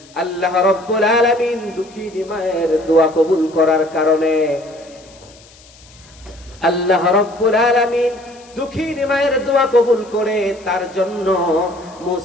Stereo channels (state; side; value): noise; left; hiss, 25 dB below the sound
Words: আল্লাহ রাব্বুল আলামিন দুঃখিনী মায়ের দোয়া কবুল করার কারণে, আল্লাহ রাব্বুল আলামিন দুঃখিনী মায়ের দোয়া কবুল করে তার জন্য